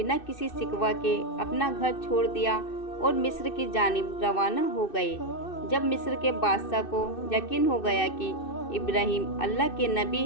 किसी शिकवा के अपना घर छोड़ दिया और मिस्र की जानिब रवाना हो गए। जब मिस्र के बादशाह को यकीन हो गया कि इब्राहीम अल्लाह के नबी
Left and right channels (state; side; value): late; right; 2.6 ms